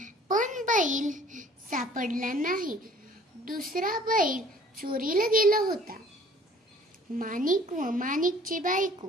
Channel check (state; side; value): normal; both; correlation 0.53